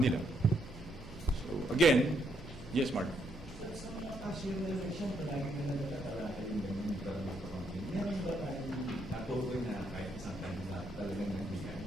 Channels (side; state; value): both; normal; correlation 0.75